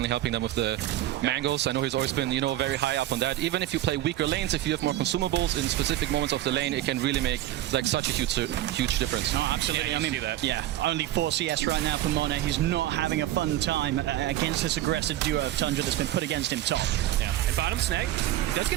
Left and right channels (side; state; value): left; quieter; 14.1 dB